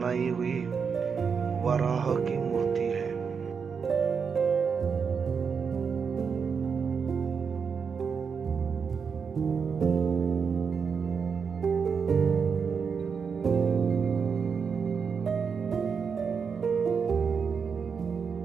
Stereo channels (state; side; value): quieter; left; 6.0 dB